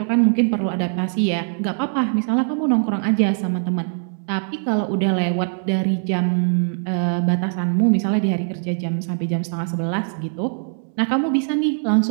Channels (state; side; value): silent; left; 65 dB below the other